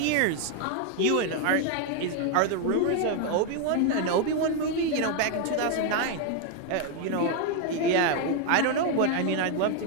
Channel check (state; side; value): different; both; correlation 0.01